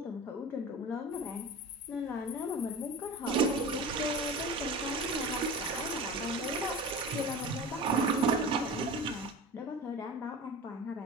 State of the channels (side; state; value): both; normal; correlation 0.33